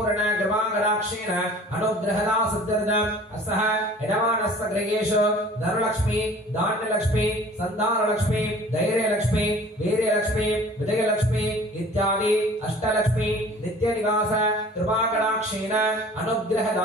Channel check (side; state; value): both; normal; correlation 0.47